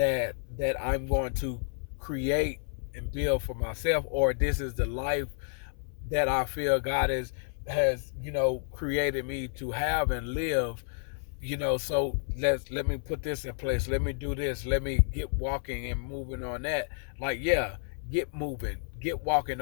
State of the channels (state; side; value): silent; right; 58 dB below the other